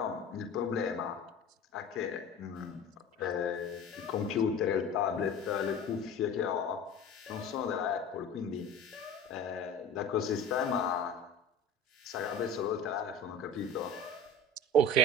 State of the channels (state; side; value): normal; both; correlation 0.36